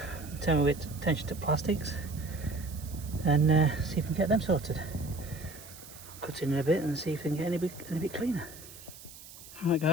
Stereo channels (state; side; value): noise; right; hiss, 17 dB below the sound